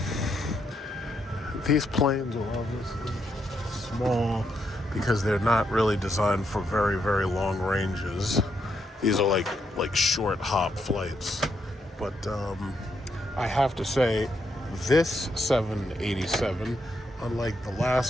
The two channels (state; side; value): normal; both; correlation 0.79